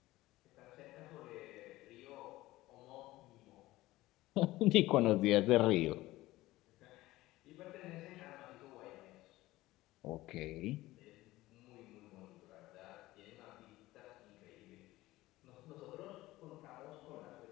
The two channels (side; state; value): right; quieter; 17.7 dB